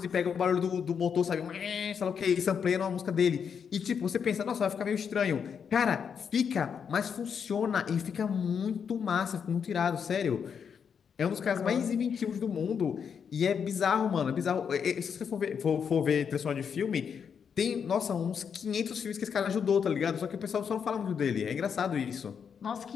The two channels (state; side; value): quieter; right; 7.0 dB